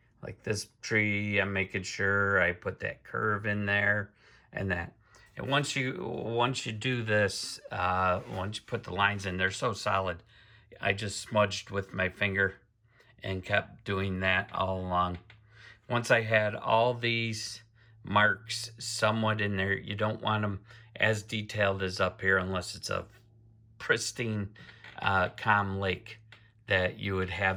like this tree, I'm making sure I put that curve in there and that. And once you do this, once you put the lines in, they're so solid. I just smudged with my finger and kept doing that all along. Once I had all these marks somewhat in there, you don't want them as detailed as up here unless it's a pristine, calm lake that you would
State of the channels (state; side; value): identical; both; correlation 1.00